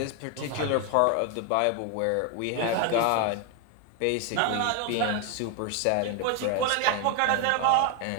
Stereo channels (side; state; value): both; different; correlation 0.01